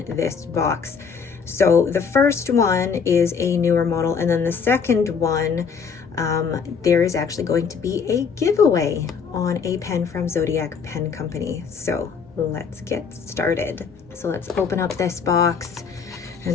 this box. So the first one is a newer model, and then the second one, there is actually going to be a giveaway on a pen from Zodiac Pen Company. So let's get started. So let's open up this box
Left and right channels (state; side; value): quieter; right; 6.0 dB